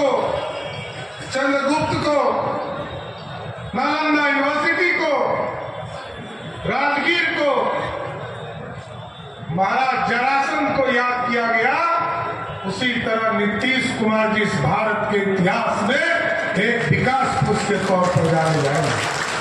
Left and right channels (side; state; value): both; identical; correlation 1.00